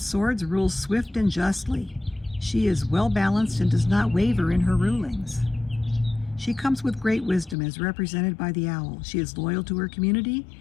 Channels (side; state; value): right; drops out; at 7.6 s